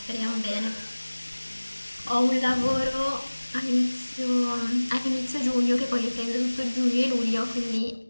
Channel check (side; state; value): both; inverted; correlation -1.00